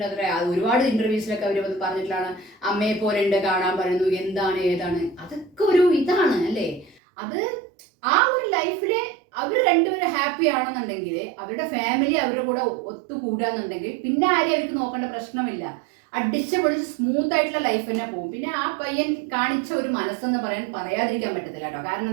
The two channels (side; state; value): left; drops out; at 7.0 s